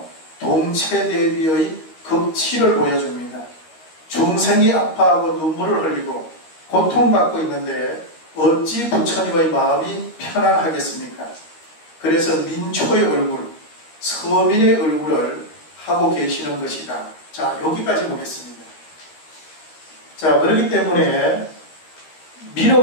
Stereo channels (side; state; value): right; late; 13 ms